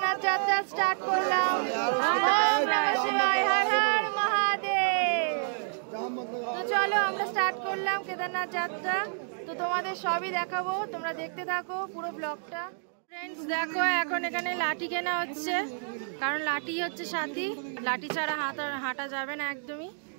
যাত্রা স্টার্ট করলাম। ওম নমঃ শিবায়, হর হর মহাদেব। তো চলো আমরা স্টার্ট করলাম কেদারনাথ যাত্রা। তো তোমাদের সবই দেখাবো, তোমরা দেখতে থাকো পুরো ব্লগটা। ফ্রেন্ডস দেখো, এখন এখানে লাঠি কেনা হচ্ছে, কারণ লাঠি হচ্ছে সাথী, লাঠি ছাড়া হাঁটা যাবে না একদমই।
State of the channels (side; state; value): left; silent; digital silence